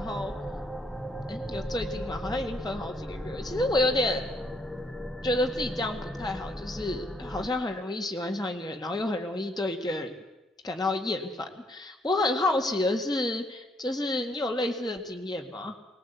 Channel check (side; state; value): both; normal; correlation 0.70